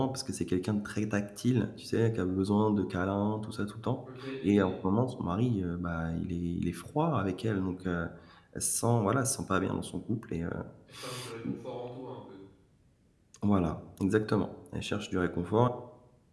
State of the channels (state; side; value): identical; both; correlation 1.00